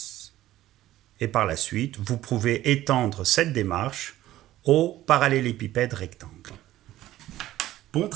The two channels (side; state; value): left; quieter; 14.6 dB